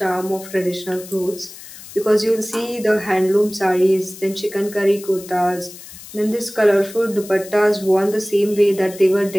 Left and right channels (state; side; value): noise; left; hiss, 16 dB below the sound